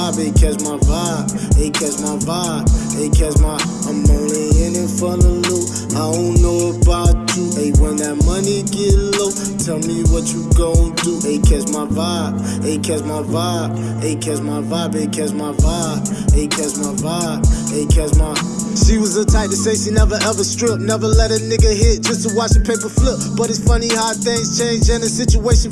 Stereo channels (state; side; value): identical; both; correlation 1.00